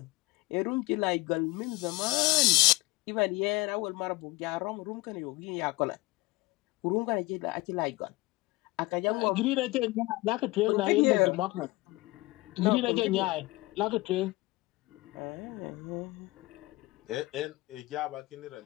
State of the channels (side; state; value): right; quieter; 21.4 dB